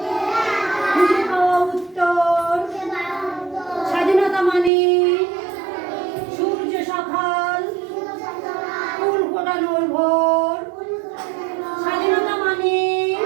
খুঁজে পাওয়া উত্তর, স্বাধীনতা মানে সূর্য সকাল, ফুল ফোটানোর ভোর, স্বাধীনতা মানে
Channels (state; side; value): drops out; left; at 4.7 s